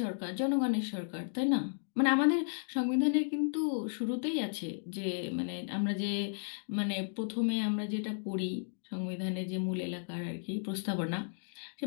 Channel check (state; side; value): silent; right; digital silence